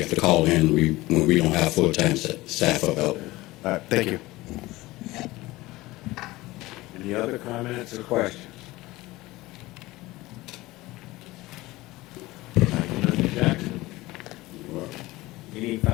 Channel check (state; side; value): quieter; right; 19.4 dB